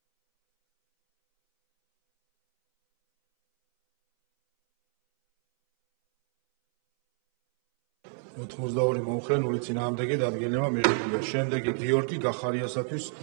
ოთხმოცდაორი მომხრე, 0 წინააღმდეგი დადგენილება მიღებულია. შემდეგი გიორგი გახარიასათვის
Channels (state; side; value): silent; left; 59 dB below the other